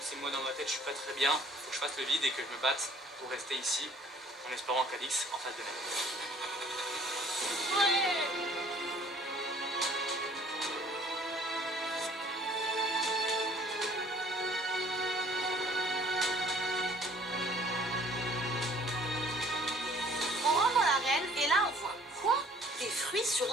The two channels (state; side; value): normal; both; correlation 0.56